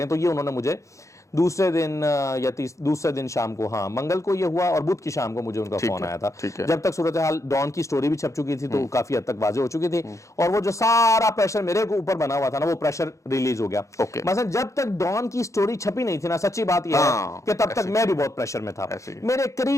ہیں. تو یہ انہوں نے مجھے دوسرے دن یا دوسرے دن شام کو, ہاں منگل کو یہ ہوا, اور بدھ کی شام کو مجھے ان کا فون آیا تھا. جب تک صورتحال ڈان کی سٹوری بھی چھپ چکی تھی تو کافی حد تک واضح ہو چکی تھی, اور وہ جو سارا پریشر میرے اوپر بنا ہوا تھا نا وہ پریشر ریلیز ہو گیا. مثلا جب تک ڈان کی سٹوری چھپی نہیں تھی نا, سچی بات یہ ہے کہ تب تک میں بھی بہت پریشر میں تھا. میرے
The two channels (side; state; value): right; late; 0.15 ms